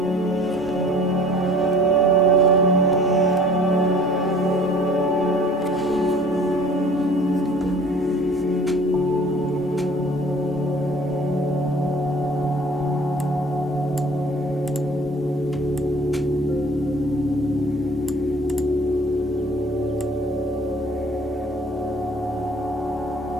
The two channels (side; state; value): both; normal; correlation 0.50